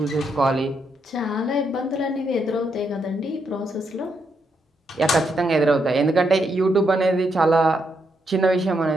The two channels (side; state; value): both; normal; correlation 0.79